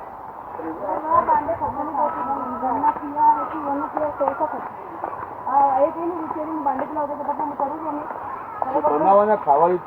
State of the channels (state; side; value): identical; both; correlation 1.00